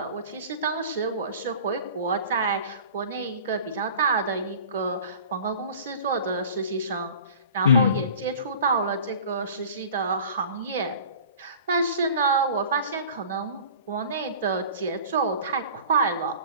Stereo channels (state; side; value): inverted; both; correlation -0.42